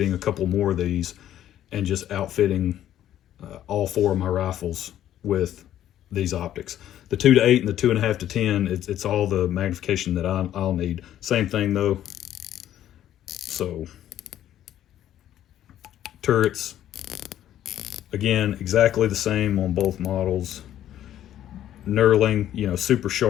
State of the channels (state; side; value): quieter; right; 11.7 dB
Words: a couple more of these and just outfitting all 4 of my rifles with these optics. The 2 to 8 and the 2.5 to 10, it's all the magnification that I'll need. Same thing though. So turrets, again, exactly the same on both models. Knurling, you know, super